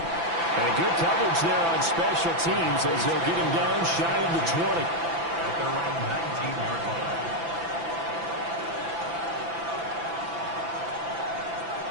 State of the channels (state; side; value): late; left; 6.0 ms